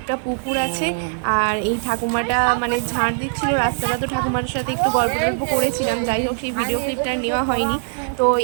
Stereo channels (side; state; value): left; silent; digital silence